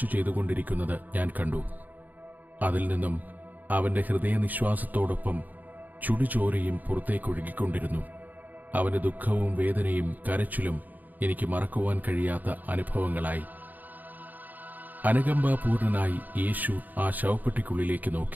ചെയ്തുകൊണ്ടിരിക്കുന്നത് ഞാൻ കണ്ടു. അതിൽ നിന്നും അവന്റെ ഹൃദയനിശ്വാസത്തോടൊപ്പം ചുടുചോരയും പുറത്തേക്കൊഴുകിക്കൊണ്ടിരുന്നു. അവന്റെ ദുഃഖവും വേദനയും കരച്ചിലും എനിക്ക് മറക്കുവാൻ കഴിയാത്ത അനുഭവങ്ങളായി. അനുകമ്പാപൂർണനായി യേശു ആ ശവപ്പെട്ടിക്കുള്ളിലേക്ക്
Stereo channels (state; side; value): late; left; 0.083 ms